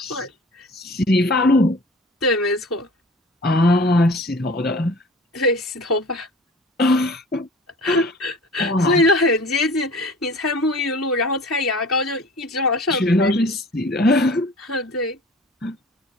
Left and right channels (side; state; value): both; normal; correlation 0.44